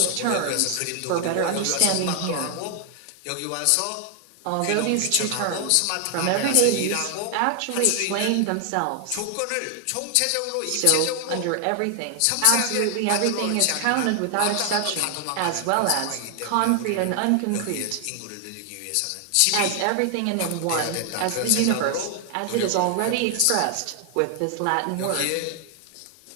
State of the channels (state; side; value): different; both; correlation 0.00